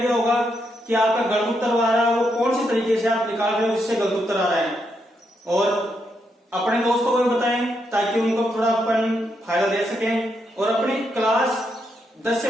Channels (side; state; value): both; normal; correlation 0.80